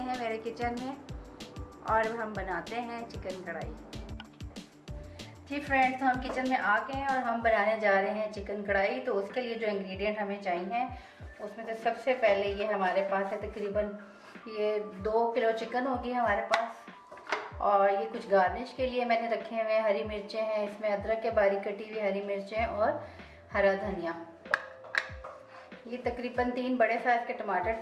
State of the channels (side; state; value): both; identical; correlation 1.00